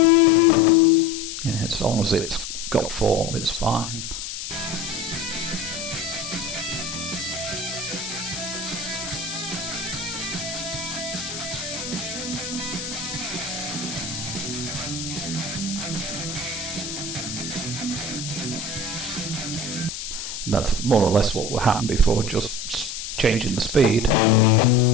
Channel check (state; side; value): noise; left; hiss, 7 dB below the sound